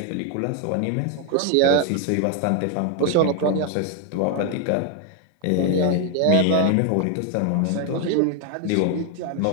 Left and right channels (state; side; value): different; both; correlation 0.00